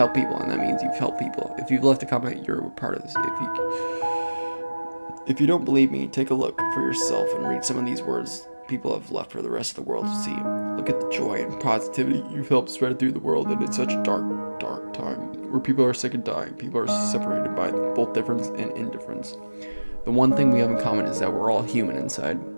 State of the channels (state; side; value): inverted; both; correlation -1.00